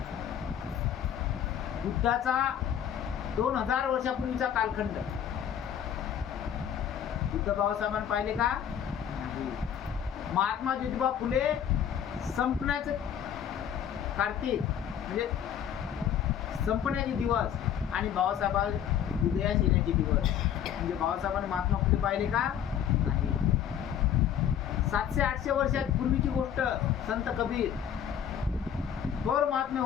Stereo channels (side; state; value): right; quieter; 9.3 dB